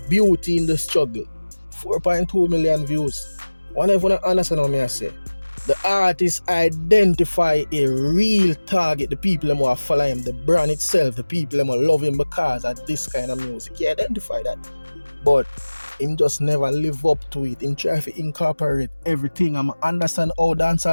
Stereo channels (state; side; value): inverted; both; correlation -1.00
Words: Beauty in the Struggle. 4.2 million views. Whenever you understand what I say, the artist identify a real target, the people who are follow him, the brand itself, the people who love him because of this kind of music. He identify that. But him just never live up to it. Him try to incorporate everything. I understand how